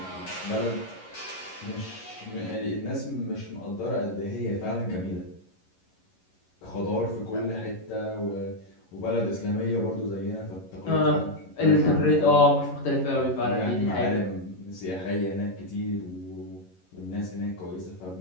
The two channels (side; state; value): right; late; 11 ms